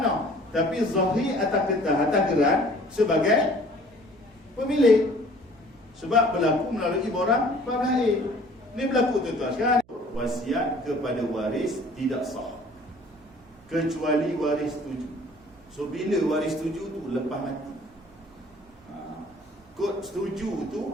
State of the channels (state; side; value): noise; right; hum, 29 dB below the sound